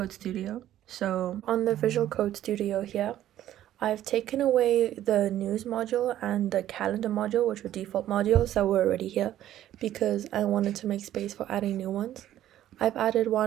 Studio. So on the Visual Code Studio here, I've taken away the news module and the calendar module, which were default modules that were already here, because I wanted to make space for adding new ones. I've added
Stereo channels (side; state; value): left; quieter; 12.5 dB